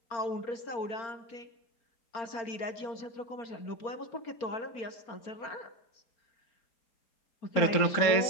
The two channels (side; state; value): right; late; 4.4 ms